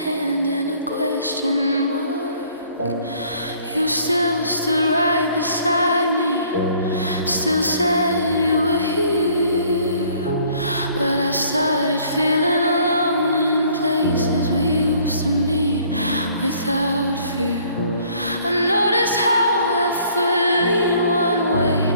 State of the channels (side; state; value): both; inverted; correlation -0.59